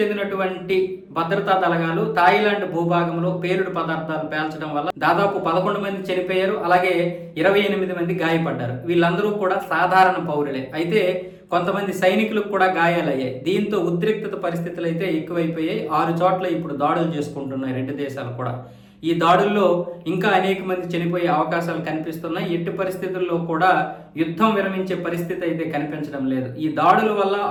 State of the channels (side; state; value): both; identical; correlation 1.00